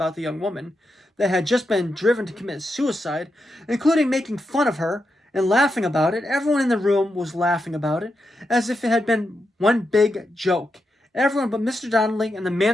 the young woman that had just been driven to commit suicide, including making fun of her and laughing about it. Everyone in the room was laughing about it, as if it had been one big joke. Everyone but Mr. Donnelly and the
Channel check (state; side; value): normal; both; correlation 0.86